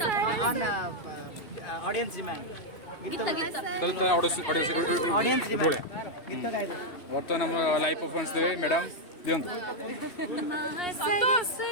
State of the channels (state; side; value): late; right; 2.7 ms